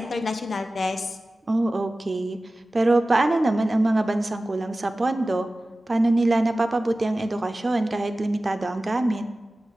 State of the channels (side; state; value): both; normal; correlation 0.96